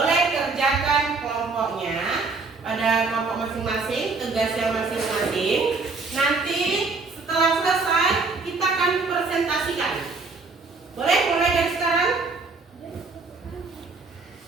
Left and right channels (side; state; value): left; quieter; 4.1 dB